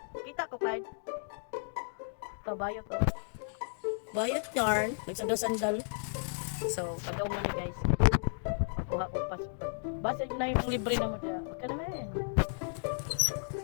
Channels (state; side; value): silent; right; digital silence